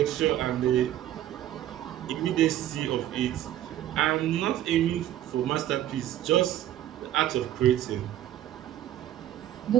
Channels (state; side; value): quieter; left; 12.6 dB